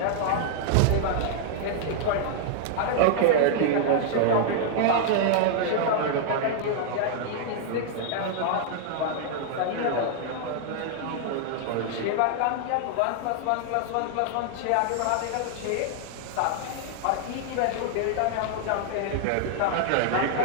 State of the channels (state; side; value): different; both; correlation -0.01